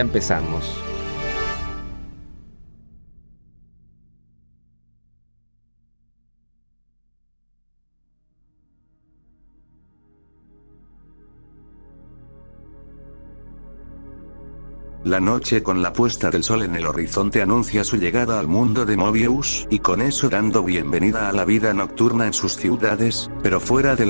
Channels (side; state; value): both; inverted; correlation -1.00